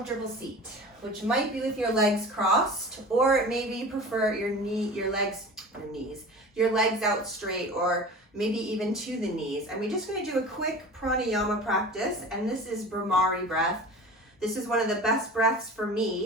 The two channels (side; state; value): both; normal; correlation 0.37